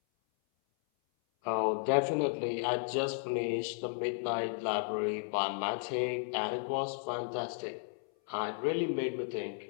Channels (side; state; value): right; silent; 55 dB below the other